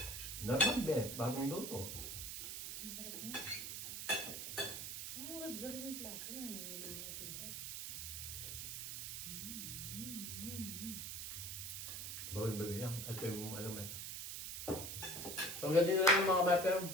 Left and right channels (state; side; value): noise; right; hiss, 5 dB below the sound